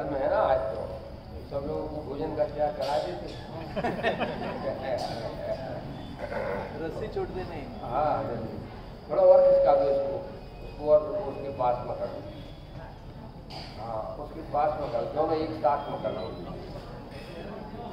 है ना। आज तो सब लोगों को भोजन का त्याग करा देते। रस्सी छोड़ दे नहीं। हाँ, थोड़ा और खिसका दो उसको और उसके पास में कर दो। हाँ, उसके पास में कर दो, दोनों एक साथ में कर दो।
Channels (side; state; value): both; identical; correlation 1.00